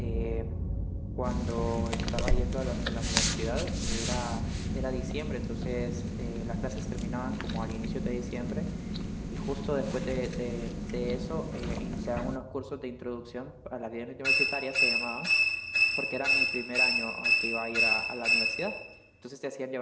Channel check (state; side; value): identical; both; correlation 1.00